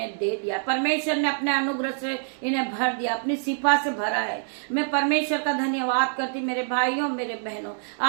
दे दिया, परमेश्वर ने अपने अनुग्रह से इन्हें भर दिया, अपनी सिफा से भरा है। मैं परमेश्वर का धन्यवाद करती मेरे भाइयों मेरे बहनों,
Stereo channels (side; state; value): left; silent; digital silence